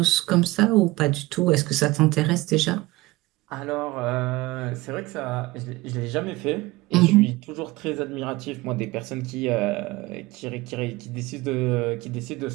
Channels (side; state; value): left; quieter; 20.3 dB